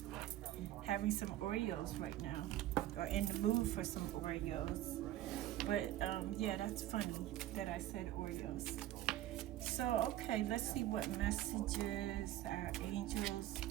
having some Oreos right now, or in the mood for some Oreos. But yeah, that's funny that I said Oreos. So, okay, let's see what messages our angels,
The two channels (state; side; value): quieter; left; 13.9 dB